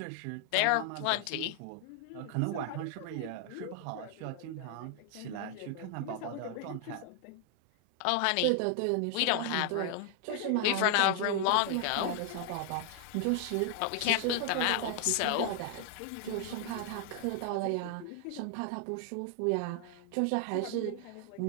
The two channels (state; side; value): different; both; correlation 0.00